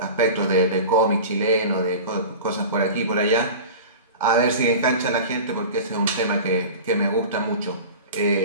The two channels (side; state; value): both; inverted; correlation -0.34